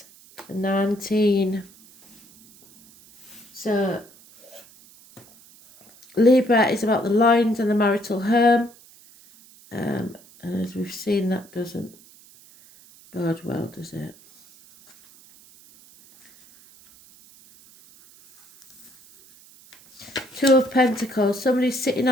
19. So Libra is about the loins and the marital home. And as we've seen, that doesn't bode well, does it? Two of Pentacles. Somebody's sitting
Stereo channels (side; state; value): right; noise; hiss, 25 dB below the sound